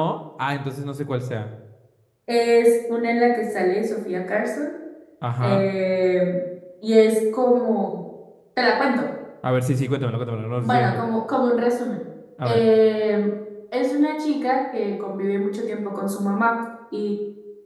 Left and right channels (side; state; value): both; identical; correlation 1.00